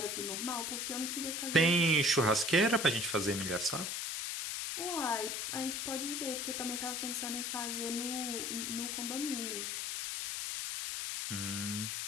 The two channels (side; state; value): left; noise; hiss, 2 dB below the sound